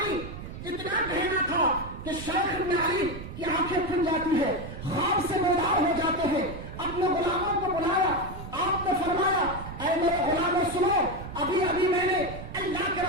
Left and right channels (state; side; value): noise; right; rumble, 11 dB below the sound